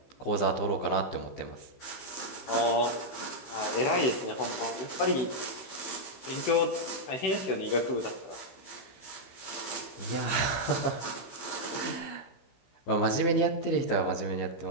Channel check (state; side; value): late; right; 16 ms